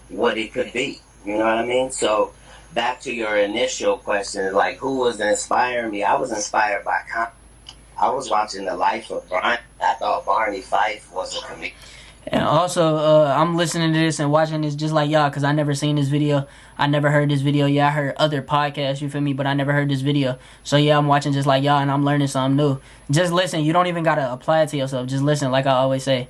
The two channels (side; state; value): both; identical; correlation 1.00